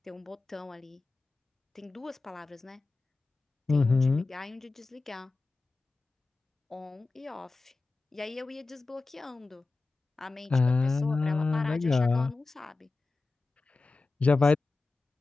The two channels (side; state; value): right; quieter; 3.6 dB